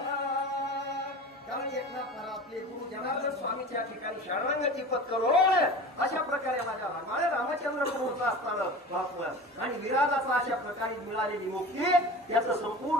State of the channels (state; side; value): normal; both; correlation 0.35